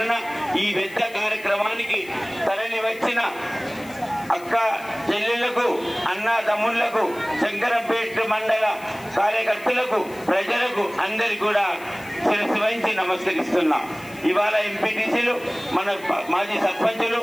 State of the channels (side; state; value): left; noise; hiss, 22 dB below the sound